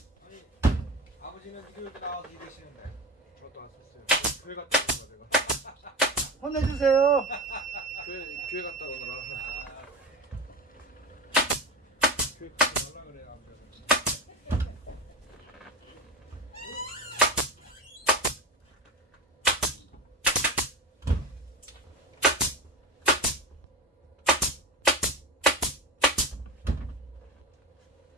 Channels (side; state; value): both; normal; correlation 0.26